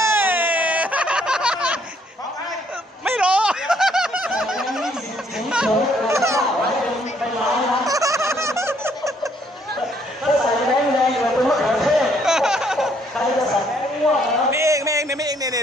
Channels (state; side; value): normal; both; correlation 0.67